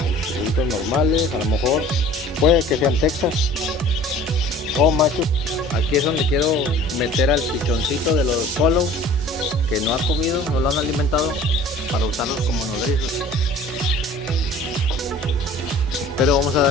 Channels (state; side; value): normal; both; correlation 0.47